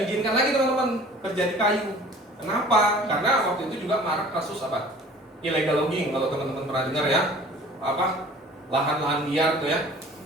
diizinkan lagi teman-teman kerja di kayu. Kenapa? Karena waktu itu juga marak kasus illegal logging, kalau teman-teman pernah dengar ya, lahan-lahan liar tuh ya.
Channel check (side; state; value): both; normal; correlation 0.48